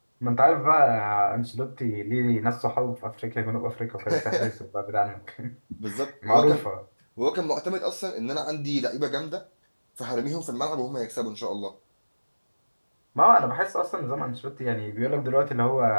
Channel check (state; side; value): inverted; both; correlation -1.00